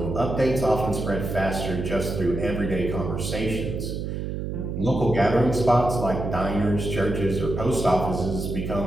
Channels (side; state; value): right; noise; hum, 4 dB below the sound